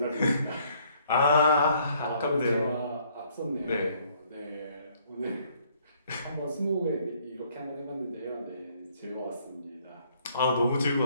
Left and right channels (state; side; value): inverted; both; correlation -0.65